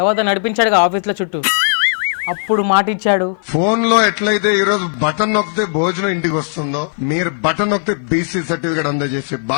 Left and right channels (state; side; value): silent; right; 56 dB below the other